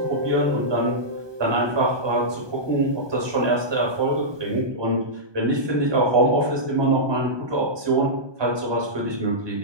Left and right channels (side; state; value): left; late; 1.2 ms